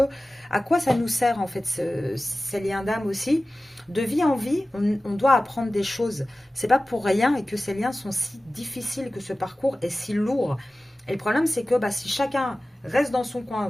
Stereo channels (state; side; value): normal; both; correlation 0.96